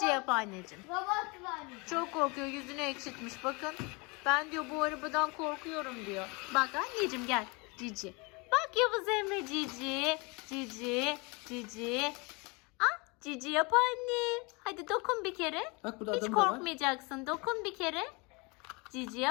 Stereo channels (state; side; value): quieter; right; 28.5 dB